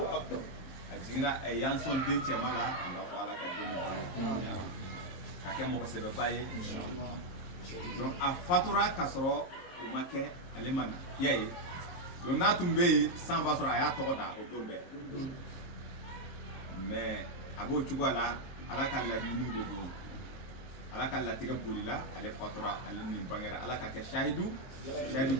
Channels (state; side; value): late; right; 23 ms